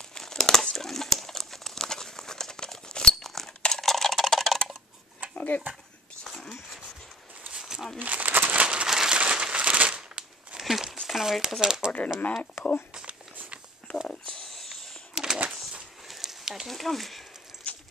the last one. Okay. So, it's kind of weird because I ordered a mag pull, but I guess that didn't come.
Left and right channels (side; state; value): both; normal; correlation 0.47